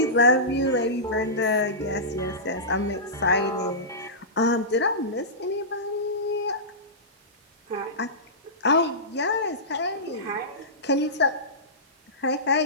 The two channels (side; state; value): both; normal; correlation -0.18